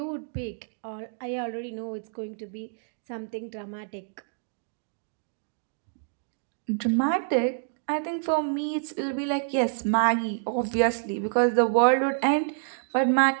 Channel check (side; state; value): left; silent; digital silence